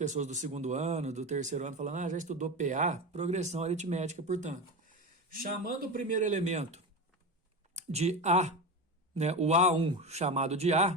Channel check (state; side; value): normal; both; correlation 0.22